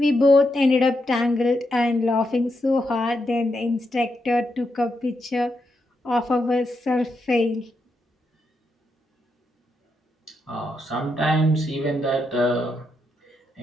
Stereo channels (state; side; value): normal; both; correlation 0.83